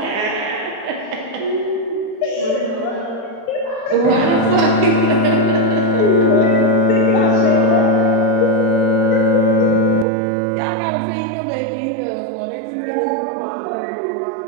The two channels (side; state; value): left; drops out; at 10.1 s